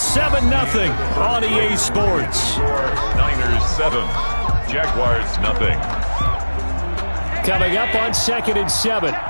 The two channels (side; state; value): both; inverted; correlation -1.00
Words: on EA Sports. Niners 7, Jaguars 0. Coming up on 2nd and 7.